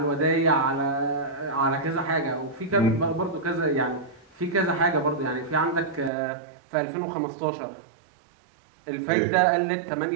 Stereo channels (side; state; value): left; drops out; at 6.1 s